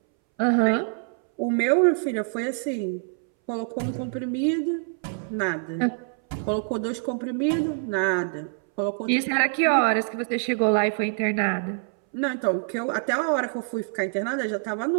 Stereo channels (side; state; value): left; silent; 61 dB below the other